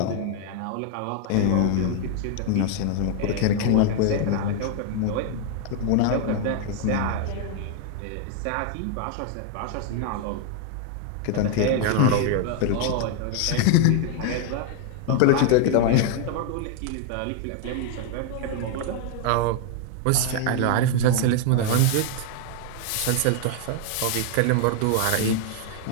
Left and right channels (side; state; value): both; different; correlation 0.00